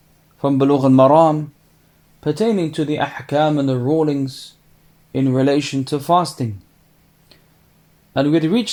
from Bulugh and Maram pertaining to the ahkam and the rulings in relation to fasting. And we had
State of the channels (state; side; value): identical; both; correlation 1.00